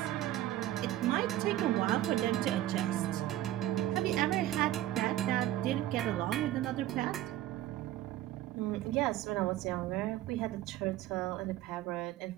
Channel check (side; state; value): left; quieter; 14.0 dB